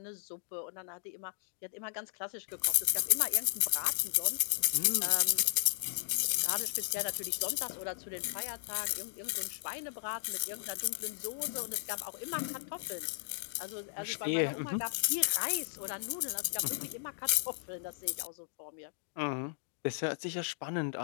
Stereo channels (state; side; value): silent; right; digital silence